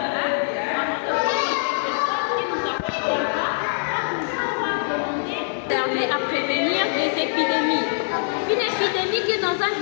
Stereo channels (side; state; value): right; silent; digital silence